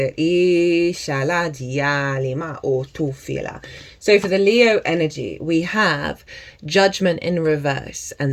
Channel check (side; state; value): both; identical; correlation 1.00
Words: So for the Leo energy, we have Judgment in reverse,